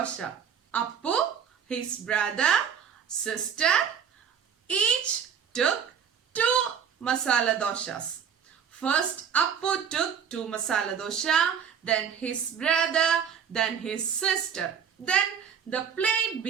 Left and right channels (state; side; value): quieter; left; 7.7 dB